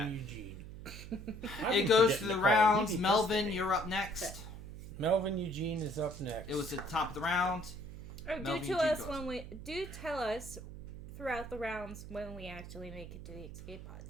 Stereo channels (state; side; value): noise; right; hum, 12 dB below the sound